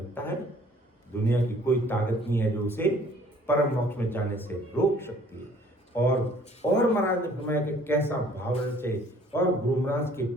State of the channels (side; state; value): both; normal; correlation 0.56